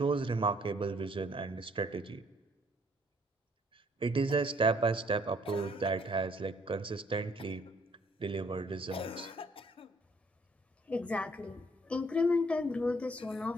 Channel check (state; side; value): normal; both; correlation 0.64